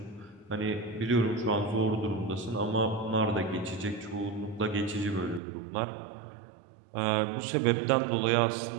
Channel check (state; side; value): drops out; left; at 5.4 s